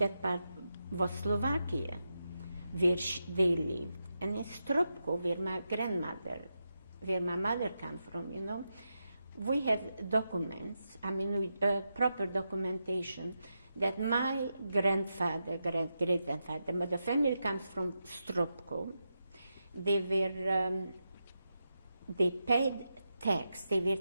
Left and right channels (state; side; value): inverted; both; correlation -0.87